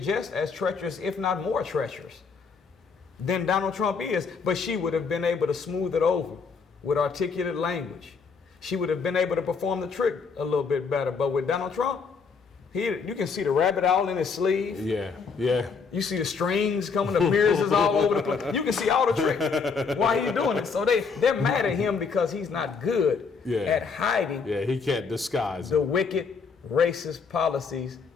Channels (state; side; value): quieter; right; 5.3 dB